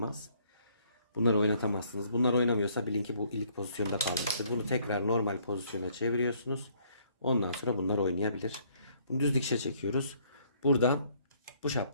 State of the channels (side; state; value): both; inverted; correlation -0.64